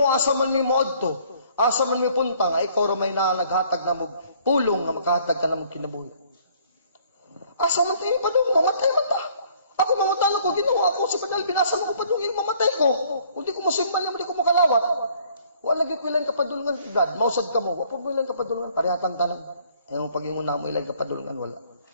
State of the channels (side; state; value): both; inverted; correlation -0.60